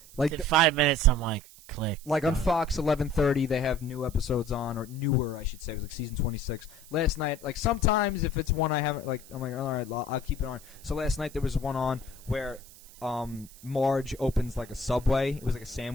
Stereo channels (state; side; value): noise; right; hiss, 21 dB below the sound